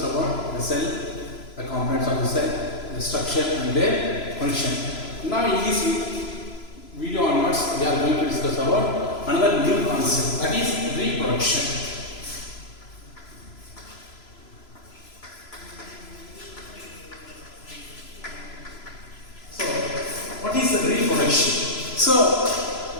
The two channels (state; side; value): late; right; 3.0 ms